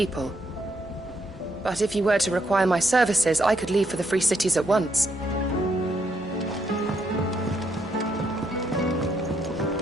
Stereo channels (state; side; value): normal; both; correlation 0.75